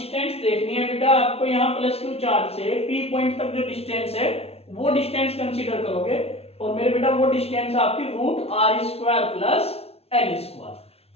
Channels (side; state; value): right; late; 0.30 ms